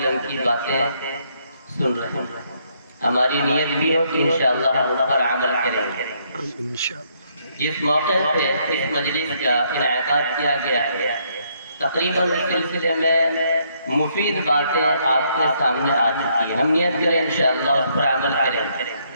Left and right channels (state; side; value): inverted; both; correlation -0.71